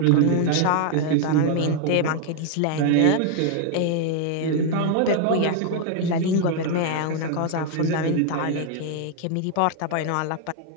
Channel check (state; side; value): different; both; correlation 0.00